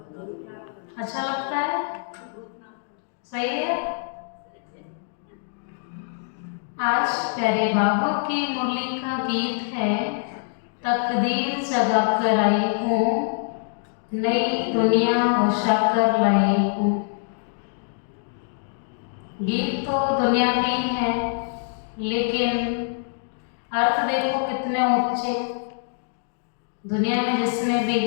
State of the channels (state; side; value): silent; right; digital silence